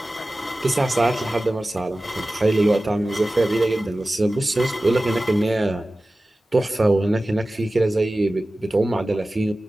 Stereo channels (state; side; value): normal; both; correlation 0.96